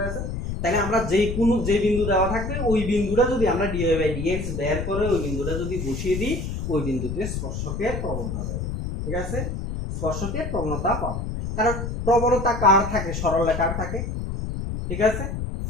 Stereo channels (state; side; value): noise; left; rumble, 4 dB below the sound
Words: গেছে? তাহলে আমরা যে বিন্দু দেওয়া থাকবে ওই বিন্দুটা যদি আমরা dy বাই dx বের করে ওই বিন্দুটা যদি বসিয়ে দিই ওই বিন্দুতে স্পর্শকের প্রবণতা পাবো, ঠিক আছে? স্পর্শকের প্রবণতা পাবো, কারণ প্রবণতা কার থাকে? সরলরেখার থাকে, ঠিক আছে?